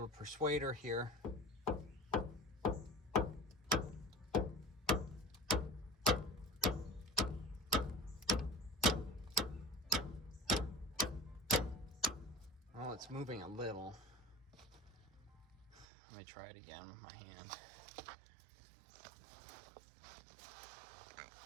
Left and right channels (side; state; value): left; drops out; at 15.9 s